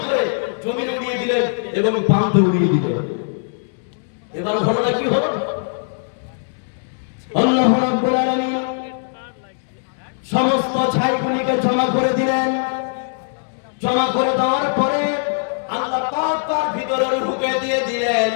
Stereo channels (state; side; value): silent; right; digital silence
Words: করে জমিনে উড়িয়ে দিলেন এবং পানিতে উড়িয়ে দিলেন। এবার ঘটনা কি হলো? আল্লাহ রাব্বুল আলামিন সমস্ত ছাইগুলিকে জমা করে দিলেন। জমা করে দেওয়ার পরে আল্লাহ পাক তার ভিতরে রূহকে দিয়ে দিলেন।